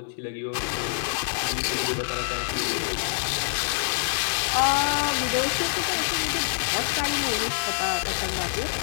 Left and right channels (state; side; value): silent; right; digital silence